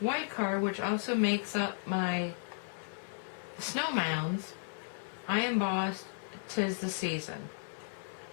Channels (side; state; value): right; silent; digital silence